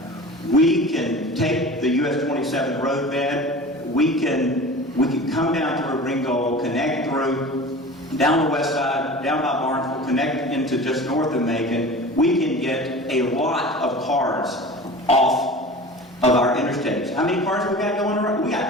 We can take the US 27 roadbed, we can come down through Ringgold, connect through, down the west side, down by Barnesville, connect into just north of Macon. We can get a lot of cars off of our interstates. How many cars we got going around? We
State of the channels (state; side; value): normal; both; correlation 0.37